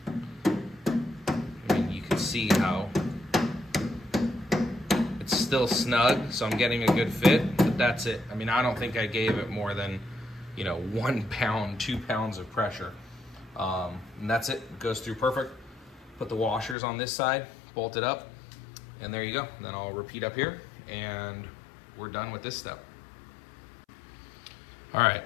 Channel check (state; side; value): drops out; right; at 16.8 s